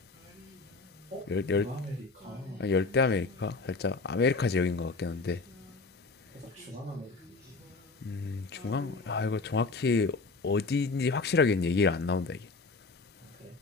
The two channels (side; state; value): right; quieter; 3.8 dB